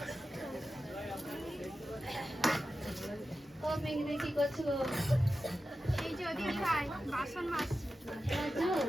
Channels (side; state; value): both; normal; correlation 0.92